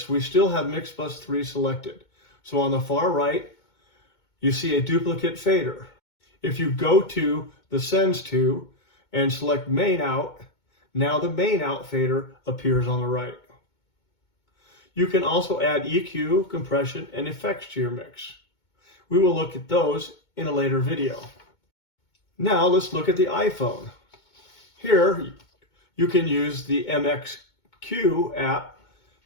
we still have mix bus 3 selected. So on the far right, you see a duplicate fader. If you go to the Sends to and select Main Out, now the Main Out fader appears on the right. You can also add EQ, compression, and effects to your mix. We will look at those in a later video. Now let's look at the iPhone. Here you can use the MXQ app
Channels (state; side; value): late; right; 2.2 ms